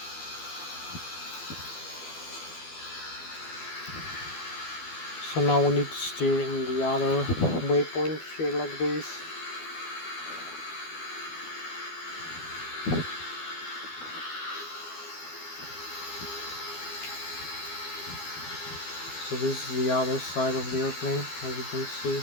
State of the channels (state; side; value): late; right; 12 ms